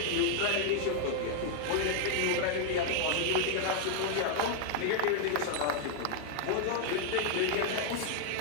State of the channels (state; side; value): different; both; correlation 0.00